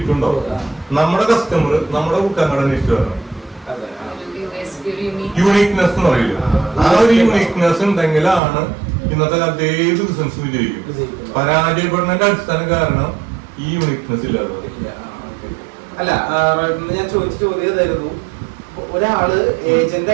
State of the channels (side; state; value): left; drops out; at 8.4 s